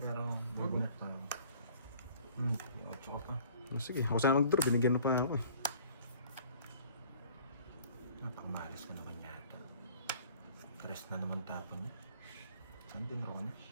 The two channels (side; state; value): both; inverted; correlation -0.51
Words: pero magunat pa. Ocho ka pa. Oh, sige, ako sana mag-draw. Binigyan mo pa ako. Napakamalas ka naman yata. Tres na naman tapon niya. Saan din ako na?